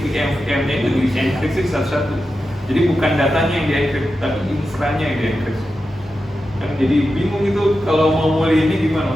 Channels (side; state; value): both; normal; correlation 0.91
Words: VM-nya itu di-encrypt satu-satu. Jadi bukan datanya yang di-encrypt, tapi infranya yang di-encrypt. Kan jadi bingung itu kalau mau mulai ini gimana?